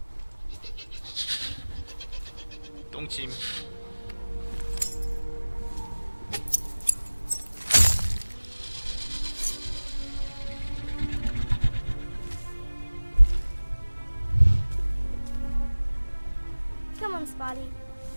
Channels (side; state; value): both; inverted; correlation -1.00